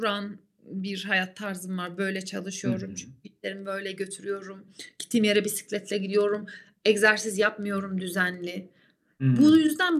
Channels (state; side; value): identical; both; correlation 1.00